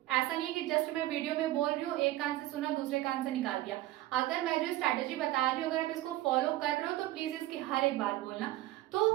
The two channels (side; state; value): left; quieter; 16.1 dB